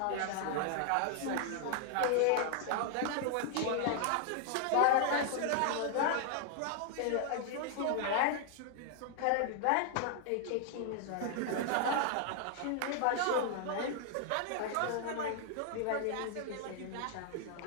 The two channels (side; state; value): both; different; correlation 0.00